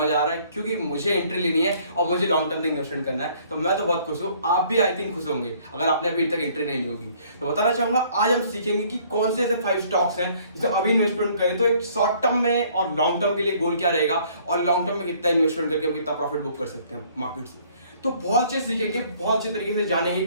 आ रहा है क्योंकि मुझे एंट्री लेनी है और मुझे लॉन्ग टर्म तक इन्वेस्टमेंट करना है। तो मैं तो बहुत खुश हूँ, आप भी आई थिंक खुश होंगे अगर आपने अभी तक एंट्री नहीं ली होगी। तो बताना चाहूंगा आज हम सीखेंगे कि कौन से ऐसे 5 स्टॉक्स हैं जिसे अभी इन्वेस्टमेंट करें तो एक शॉर्ट टर्म में और लॉन्ग टर्म के लिए गोल क्या रहेगा और लॉन्ग टर्म में कितना इन्वेस्टमेंट करके हम कितना प्रॉफिट बुक कर सकते हैं मार्केट से। तो बहुत अच्छे सीखेंगे, बहुत अच्छे तरीके से जानेंगे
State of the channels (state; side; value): inverted; both; correlation -0.60